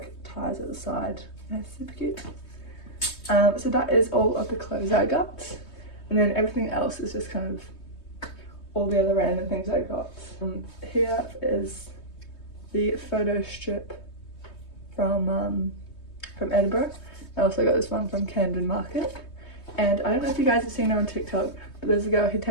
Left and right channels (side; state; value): right; late; 3.2 ms